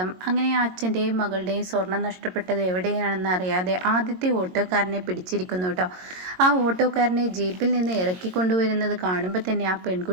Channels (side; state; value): left; late; 22 ms